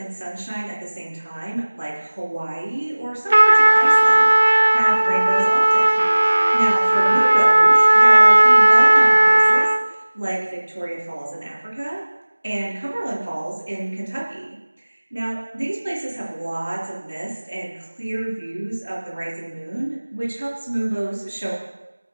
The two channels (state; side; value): inverted; both; correlation -1.00